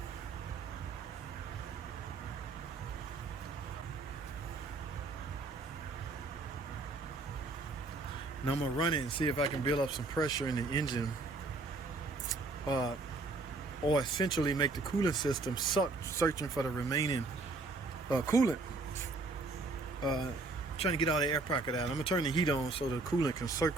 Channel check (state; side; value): quieter; left; 3.3 dB